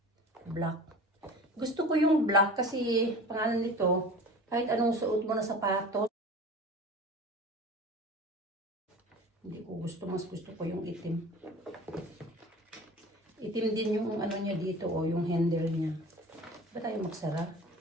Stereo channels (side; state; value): both; normal; correlation 0.39